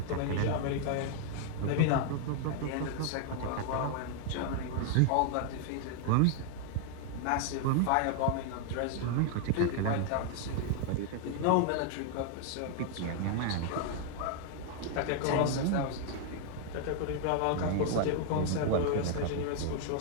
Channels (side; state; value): both; different; correlation 0.00